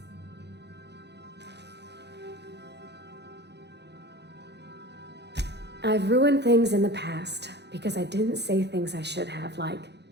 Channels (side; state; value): left; late; 0.50 ms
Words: I've ruined things in the past because I didn't say things I should have, like,